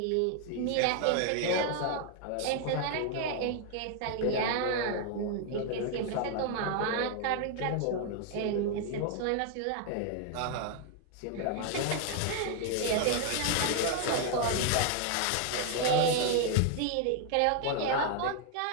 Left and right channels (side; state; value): both; different; correlation 0.00